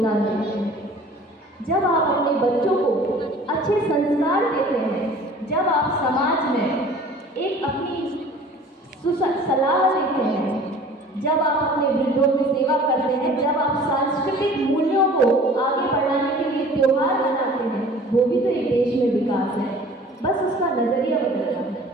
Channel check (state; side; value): normal; both; correlation 0.47